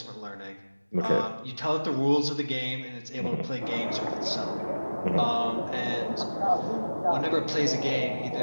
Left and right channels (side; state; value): both; inverted; correlation -1.00